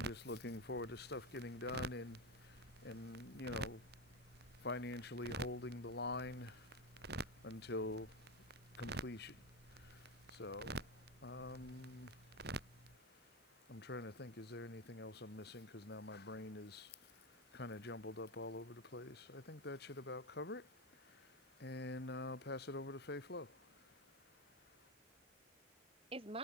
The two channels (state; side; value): normal; both; correlation 0.14